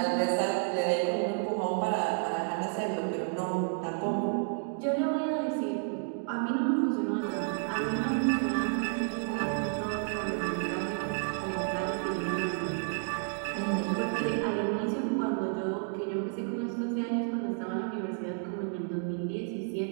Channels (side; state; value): left; silent; 57 dB below the other